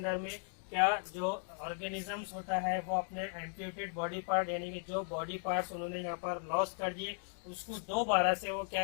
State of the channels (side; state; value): right; silent; 53 dB below the other